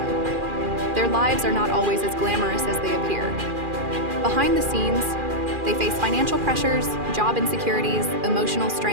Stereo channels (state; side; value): late; left; 2.4 ms